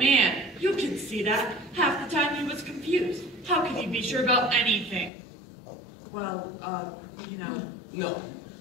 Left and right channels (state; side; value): drops out; right; at 5.1 s